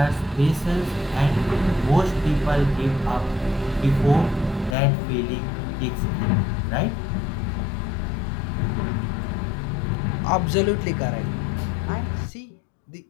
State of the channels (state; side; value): drops out; right; at 4.8 s